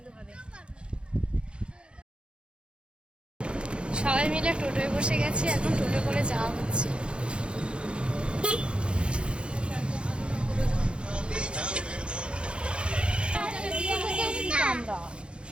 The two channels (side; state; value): left; late; 0.056 ms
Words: হবে। সবাই মিলে টোটোয় বসে গেছি, এখন টোটো করে যাওয়া হচ্ছে।